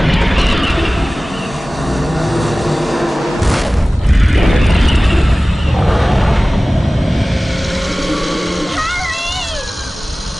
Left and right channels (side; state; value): both; normal; correlation 0.98